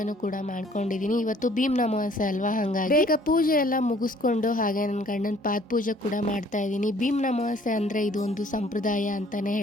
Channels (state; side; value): normal; both; correlation 0.58